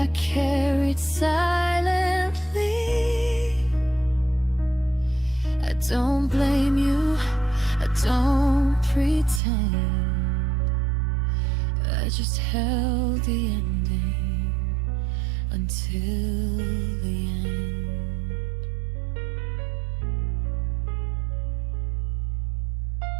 carried silently. I don't blame you, I don't pretend. I just held the ending until the end.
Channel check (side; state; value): left; drops out; at 9.4 s